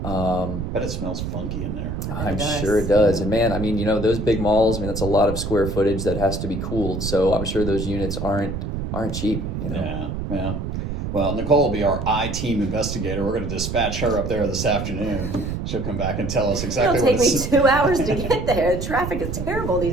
But it smells funky in there. I'm sure it does. And man, I mean, those big malls, I mean, that's a lot of square footage that has to be cooled. So I'm sure those units aren't cheap, Yeah. Well, Nicole will be our I-team investigator. We're going to dispatch her up there this afternoon. She'll come back and tell us exactly It'll take me 2 hours to get there. The traffic is terrible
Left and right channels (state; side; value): noise; right; rumble, 4 dB below the sound